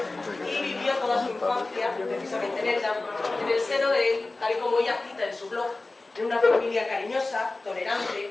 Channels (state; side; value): quieter; right; 3.2 dB